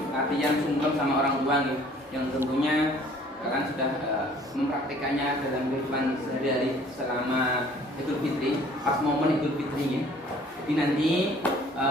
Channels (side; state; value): both; normal; correlation 0.55